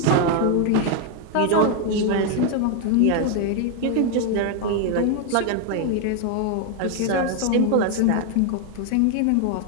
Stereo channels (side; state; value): both; different; correlation 0.01